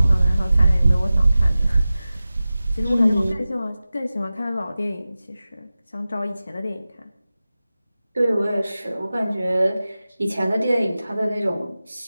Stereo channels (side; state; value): both; inverted; correlation -0.96